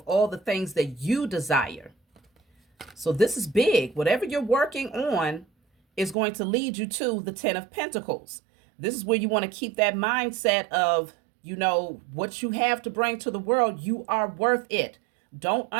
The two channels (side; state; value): left; drops out; at 6.2 s